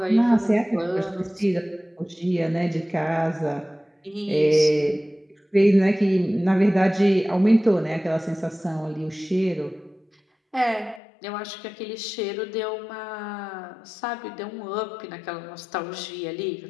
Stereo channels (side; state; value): right; drops out; at 11.0 s